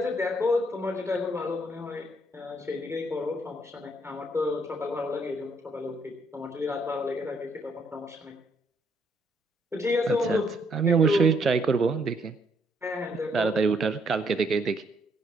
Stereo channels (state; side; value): normal; both; correlation 0.71